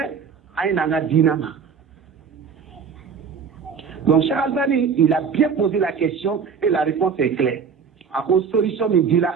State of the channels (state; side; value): quieter; left; 6.2 dB